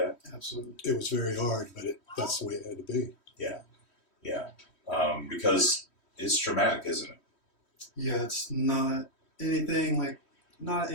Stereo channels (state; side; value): late; right; 3.1 ms